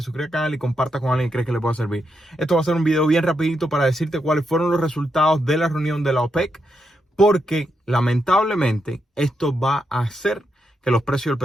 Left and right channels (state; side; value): normal; both; correlation 0.82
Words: suscribas al canal y compartas con alguien que crees que le pueda servir. Esto va a ser un video bien rapidito para decirte cuáles fueron los resultados de la reunión de la OPEC, porque lamentablemente esto va a hacer que los precios